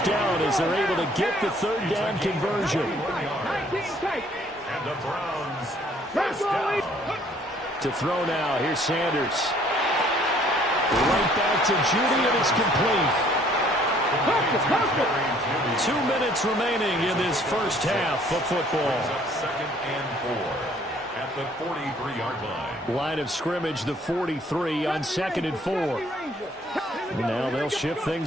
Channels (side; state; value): both; normal; correlation 0.60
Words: down as they're able to get the 3rd down conversion. And the Browns first down. To throw now, here's Sanders. Right back to Judy, and it's complete. 2 minutes remaining in this first half of football. Second and 4 at the 43-yard line. Line of scrimmage, the 43 on 2nd and 4. Now they'll shift